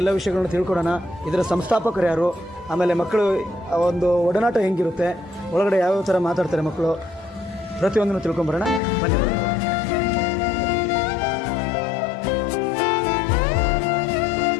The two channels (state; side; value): drops out; right; at 8.8 s